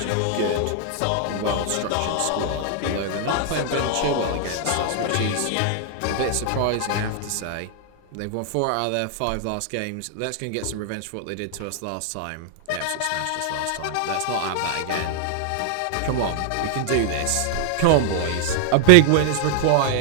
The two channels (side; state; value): both; different; correlation 0.00